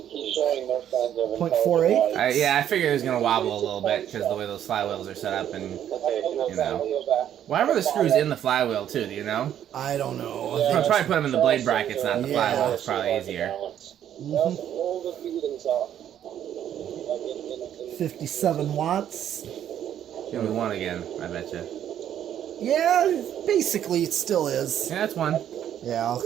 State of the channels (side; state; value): left; quieter; 10.3 dB